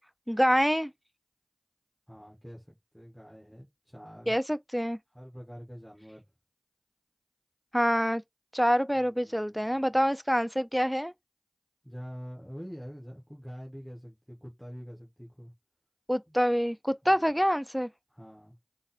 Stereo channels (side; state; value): both; identical; correlation 1.00